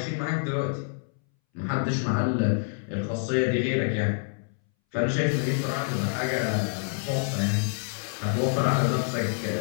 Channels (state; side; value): silent; right; 60 dB below the other